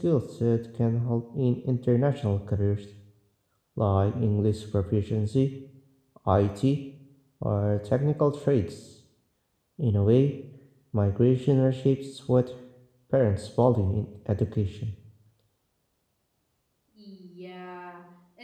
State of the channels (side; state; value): both; identical; correlation 1.00